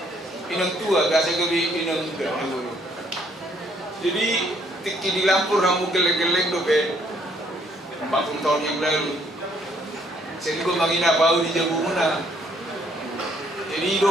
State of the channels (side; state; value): both; normal; correlation 0.66